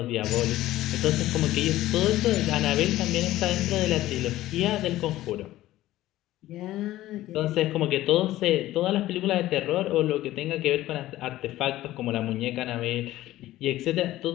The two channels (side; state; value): right; quieter; 15.4 dB